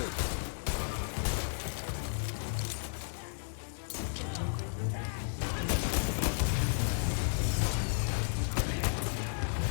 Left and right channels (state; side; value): silent; right; digital silence